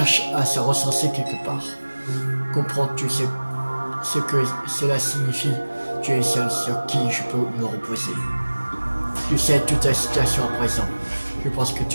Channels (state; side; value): inverted; both; correlation -1.00